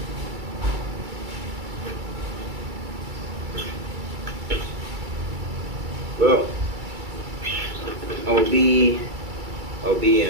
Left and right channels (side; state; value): left; late; 2.3 ms